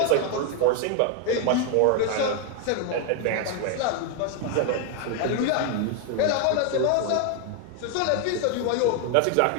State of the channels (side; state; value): both; different; correlation 0.01